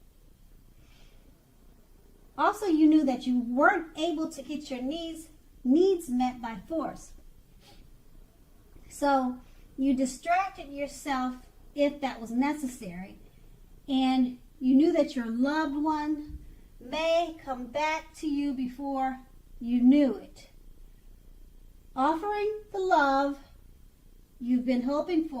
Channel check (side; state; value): both; identical; correlation 1.00